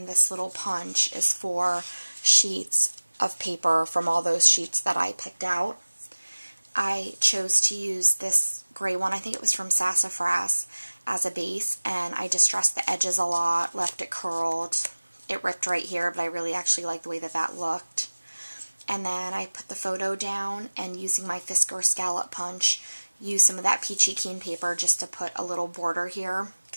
this little punch is for sheets of paper from all those sheets that I picked out. I chose to use this gray one, I think it was from Sassafras, as a base, and I distressed the edges a lot, left it curled. It ripped right here, but I really actually like the way that that looked. And then I put the photo down, and using my Fisker scallop punch, used some of that peachy keen paper just to put a little border here,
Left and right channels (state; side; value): inverted; both; correlation -1.00